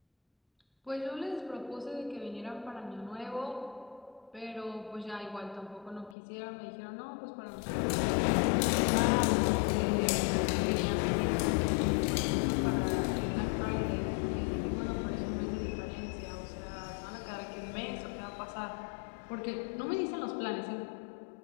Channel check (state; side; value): drops out; right; at 6.2 s